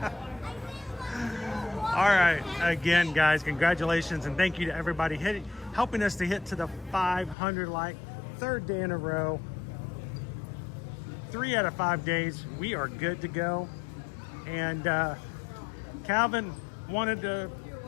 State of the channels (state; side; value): drops out; right; at 7.4 s